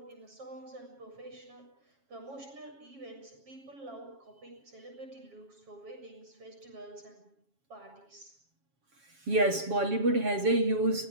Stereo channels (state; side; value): late; left; 7.3 ms